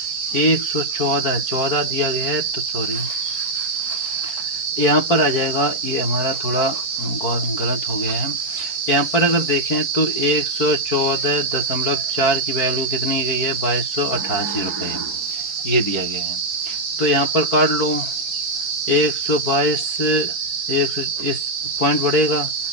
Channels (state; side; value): late; right; 4.5 ms